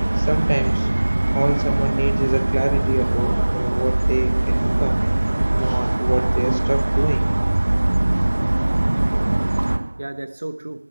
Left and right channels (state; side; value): inverted; both; correlation -1.00